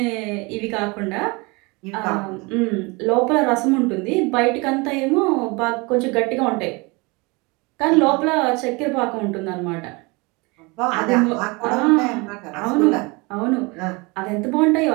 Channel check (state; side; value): quieter; left; 26.9 dB